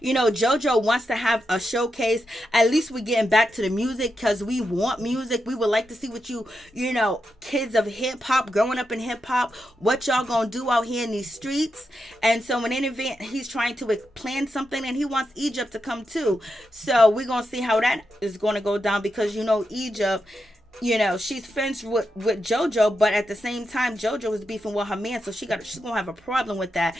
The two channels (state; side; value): normal; both; correlation 0.86